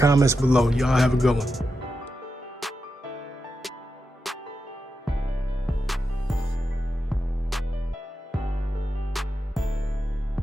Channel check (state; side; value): normal; both; correlation 0.88